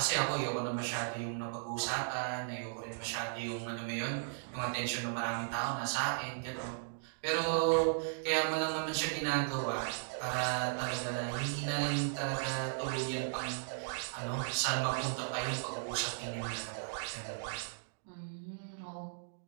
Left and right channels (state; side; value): silent; left; digital silence